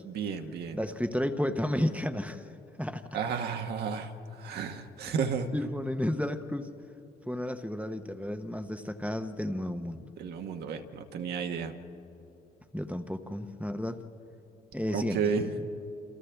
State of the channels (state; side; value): normal; both; correlation 0.69